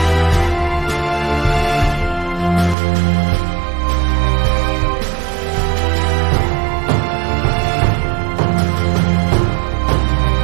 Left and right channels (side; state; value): left; drops out; at 2.8 s